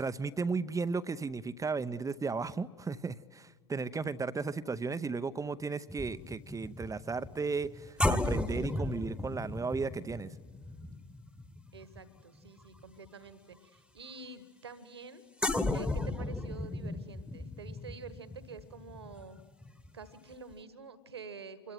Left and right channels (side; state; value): both; normal; correlation 0.71